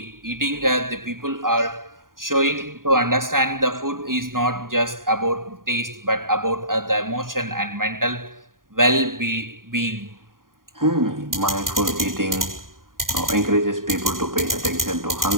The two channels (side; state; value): left; late; 0.91 ms